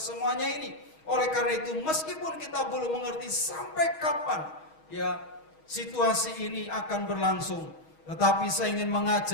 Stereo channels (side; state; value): right; late; 6.3 ms